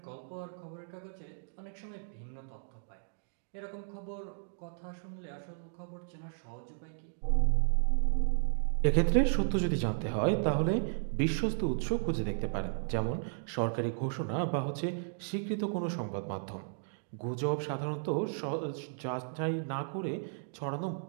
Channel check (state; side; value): silent; left; digital silence